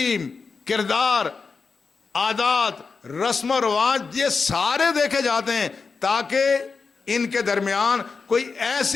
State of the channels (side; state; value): right; quieter; 4.9 dB